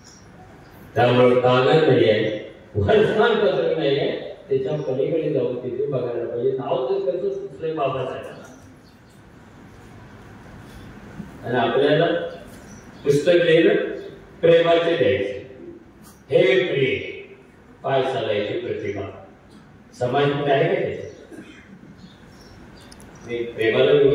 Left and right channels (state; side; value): identical; both; correlation 1.00